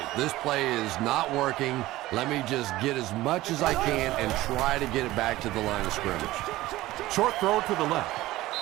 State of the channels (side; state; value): left; quieter; 17.1 dB